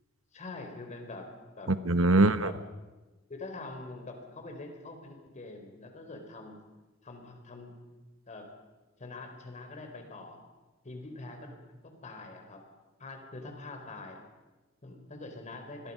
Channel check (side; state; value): both; normal; correlation 0.49